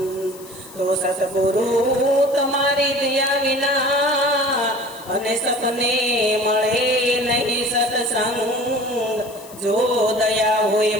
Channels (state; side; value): noise; left; hiss, 20 dB below the sound